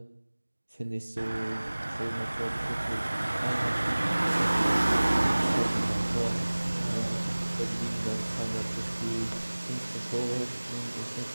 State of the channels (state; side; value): inverted; both; correlation -1.00